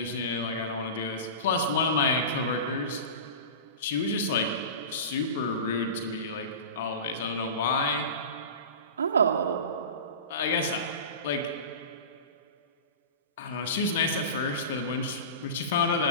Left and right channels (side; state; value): both; inverted; correlation -0.31